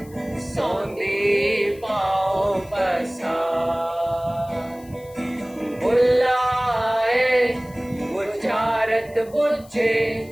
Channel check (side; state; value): left; noise; hiss, 25 dB below the sound